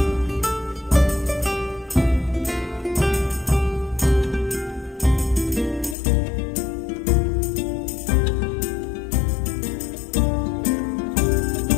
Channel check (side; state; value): right; drops out; at 6.0 s